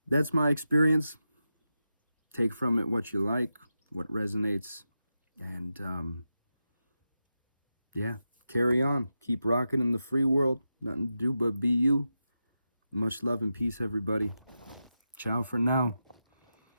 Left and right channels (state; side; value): inverted; both; correlation -0.89